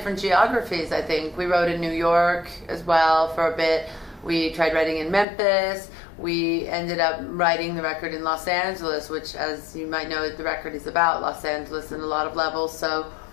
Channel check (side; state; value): right; drops out; at 5.2 s